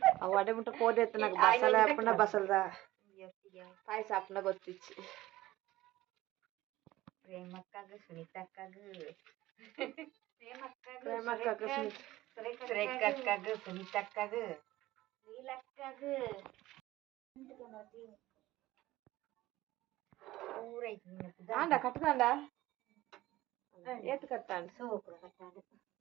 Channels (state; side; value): quieter; left; 16.9 dB